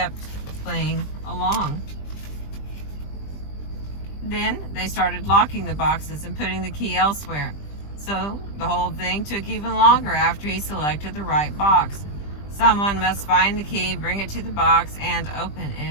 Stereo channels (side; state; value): right; late; 20 ms